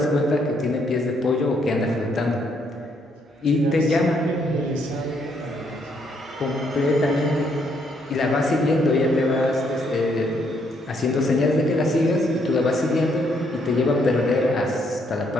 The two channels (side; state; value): both; normal; correlation 0.72